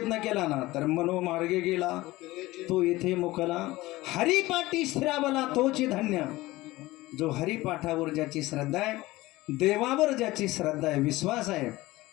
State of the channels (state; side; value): quieter; right; 18.8 dB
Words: केला ना तर मनोमार्गे गेला तो येथे मुकला. हरिपाठी स्थिरावला तोची धन्य. जो हरिपाठावर ज्याची श्रद्धा आहे, देवावर ज्याची श्रद्धा आहे, विश्वास आहे,